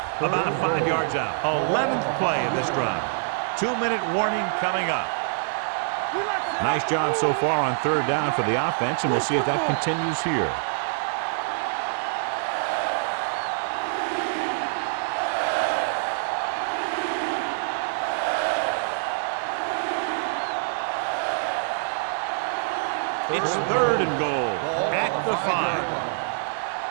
About 5 yards out. 11th play of this drive. 2-minute warning coming up. Nice job so far on third down for the offense, and we'll see if that continues here. It's third and goal at the 5.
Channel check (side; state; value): left; silent; digital silence